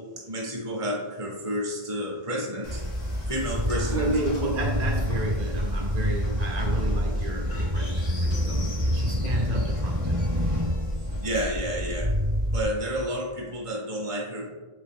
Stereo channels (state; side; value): late; left; 1.5 ms